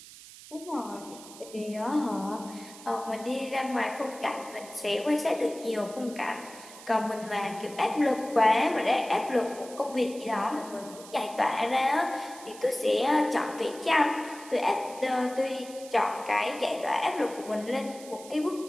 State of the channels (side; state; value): right; noise; hiss, 17 dB below the sound